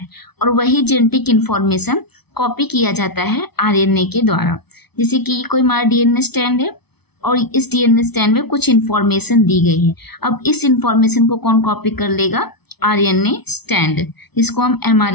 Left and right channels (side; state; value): right; late; 0.98 ms